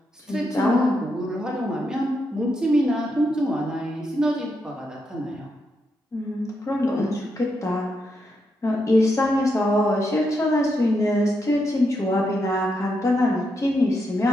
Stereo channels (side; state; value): both; normal; correlation 0.82